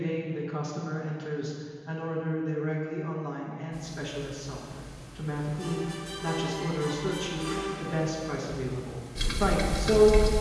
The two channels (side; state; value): both; identical; correlation 1.00